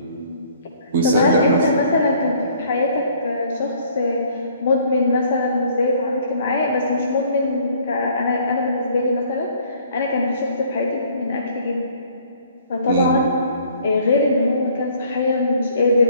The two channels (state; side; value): inverted; both; correlation -0.58